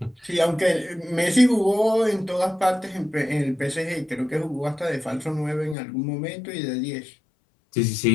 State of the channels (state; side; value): drops out; right; at 5.8 s